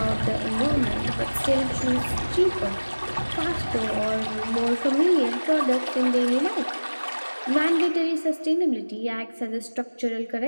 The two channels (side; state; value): both; inverted; correlation -1.00